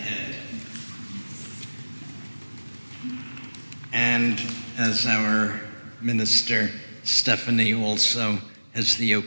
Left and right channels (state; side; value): inverted; both; correlation -1.00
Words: And as our minister, Stephanie, also has the